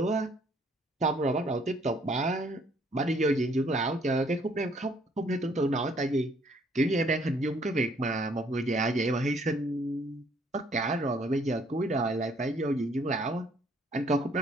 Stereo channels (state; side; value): normal; both; correlation 0.64